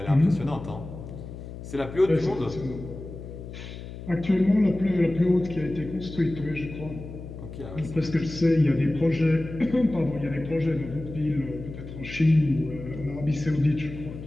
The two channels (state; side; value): noise; left; hum, 11 dB below the sound